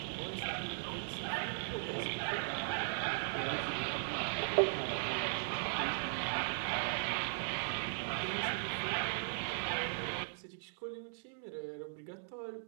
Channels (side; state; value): left; silent; digital silence